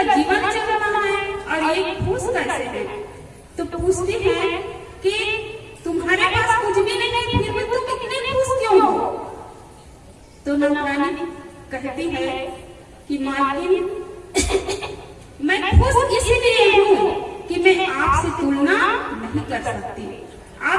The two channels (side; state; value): both; identical; correlation 1.00